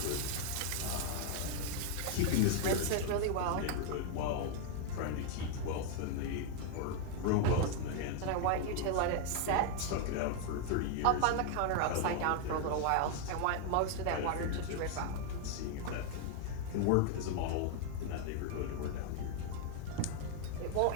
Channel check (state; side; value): different; both; correlation 0.00